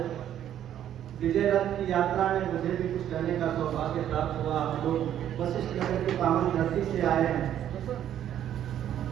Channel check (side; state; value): left; quieter; 10.7 dB